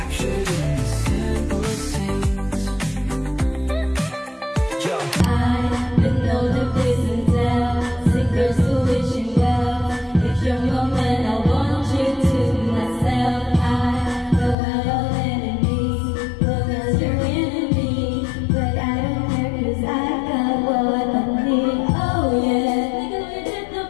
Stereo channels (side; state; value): right; drops out; at 14.6 s